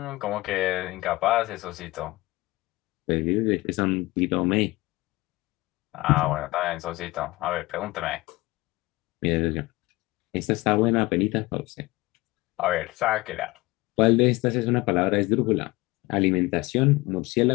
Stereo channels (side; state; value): right; quieter; 20.7 dB